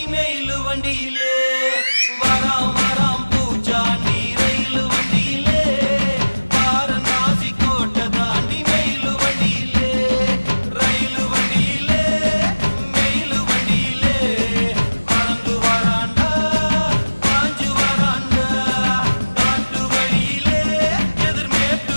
மெயிலு வண்டியிலே வராம் வராம்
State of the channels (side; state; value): both; inverted; correlation -1.00